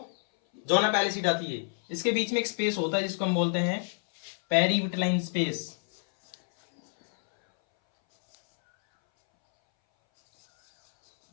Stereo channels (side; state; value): right; silent; 60 dB below the other